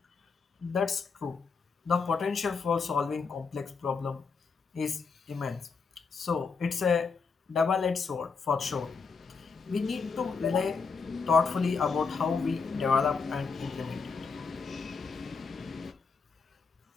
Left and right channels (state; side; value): quieter; right; 5.1 dB